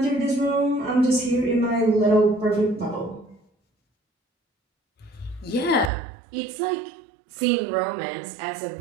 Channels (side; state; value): left; drops out; at 5.9 s